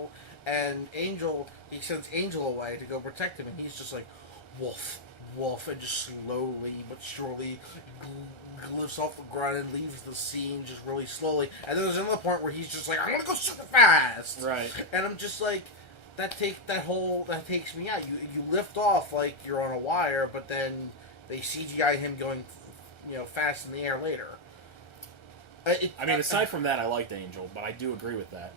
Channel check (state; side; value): late; right; 1.4 ms